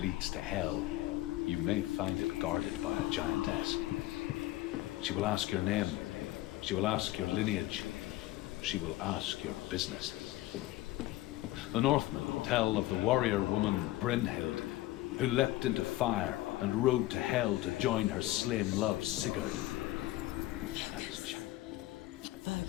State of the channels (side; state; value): right; quieter; 16.7 dB